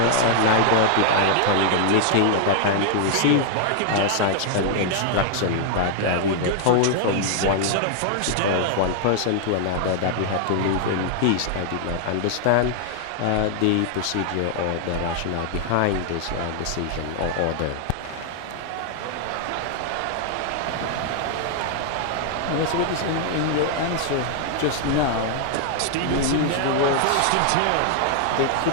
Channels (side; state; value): both; different; correlation 0.00